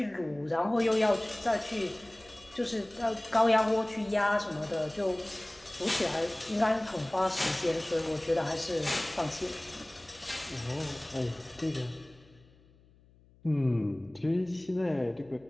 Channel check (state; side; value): noise; left; hum, 28 dB below the sound